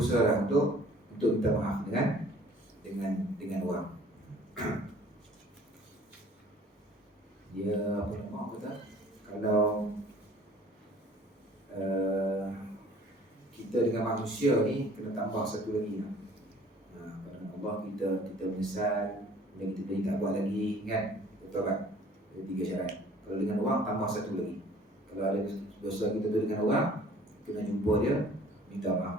lah untuk minta maaf dengan orang. Dia apa nama kata, kalau kita dengan manusia ni kena tambah satu lagi lah. Pada Allah kita menyesal, kemudian kita tak buat lagi kan, bertobat. Ada 3 syarat. Kalau dengan orang tambah satu lagi. Kalau ada dosa kita tu dengan orang, kena jumpa dia, minta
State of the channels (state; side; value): normal; both; correlation 0.52